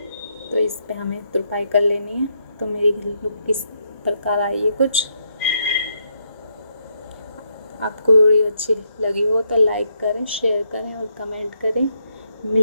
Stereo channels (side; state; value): both; inverted; correlation -0.78